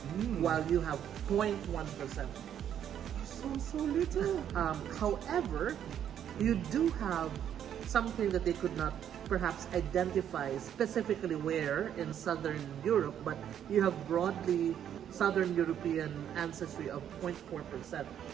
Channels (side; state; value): left; quieter; 9.7 dB